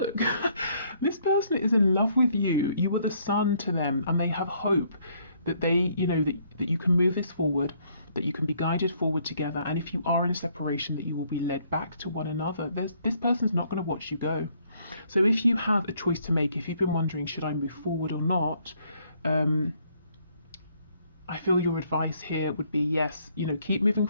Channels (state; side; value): inverted; both; correlation -0.67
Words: this person is in love with you. You are the sun to them and they have hope that they, you know, that you can move this forward, that you can be guided forward together, and if you are in separation, that you will be led back to one another. This person's not going to watch you go. So if you have a choice to make, if you've been wondering, should I move forward or not, I feel your advice here would be yes, you know, keep moving